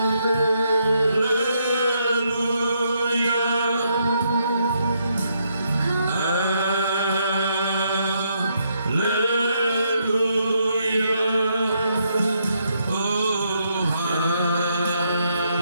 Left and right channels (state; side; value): inverted; both; correlation -0.76